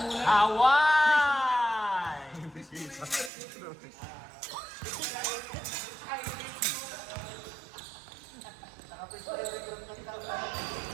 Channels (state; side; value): drops out; left; at 3.3 s